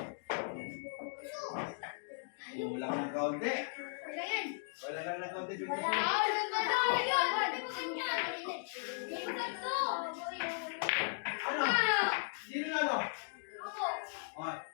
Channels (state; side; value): silent; right; digital silence